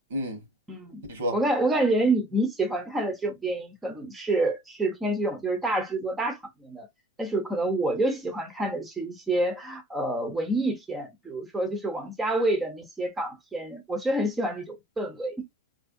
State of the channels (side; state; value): both; normal; correlation 0.61